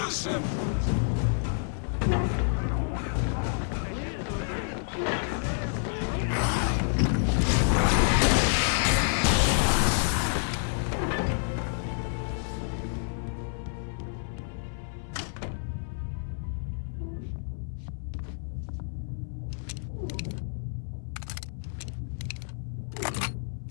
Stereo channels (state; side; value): silent; right; 59 dB below the other